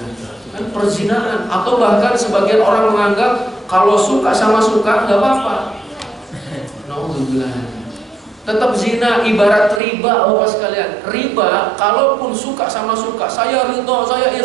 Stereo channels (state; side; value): drops out; left; at 9.8 s